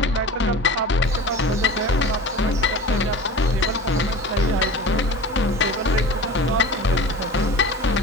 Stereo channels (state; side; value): normal; both; correlation 0.36